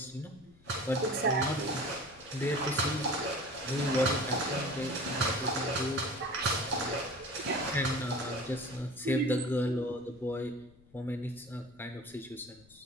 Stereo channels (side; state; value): left; noise; rumble, 26 dB below the sound